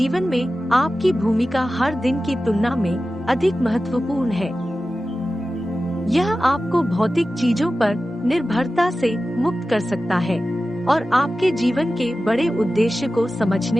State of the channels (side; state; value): both; normal; correlation 0.94